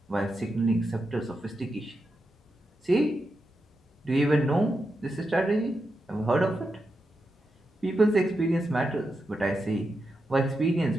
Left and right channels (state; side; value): normal; both; correlation 0.87